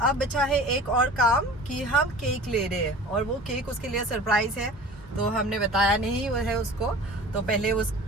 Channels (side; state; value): both; normal; correlation 0.41